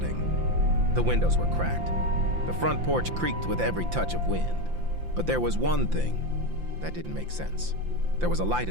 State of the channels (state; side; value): late; left; 5.8 ms